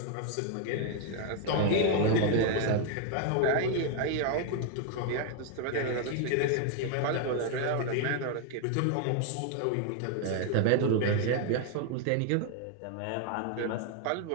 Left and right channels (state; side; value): different; both; correlation 0.00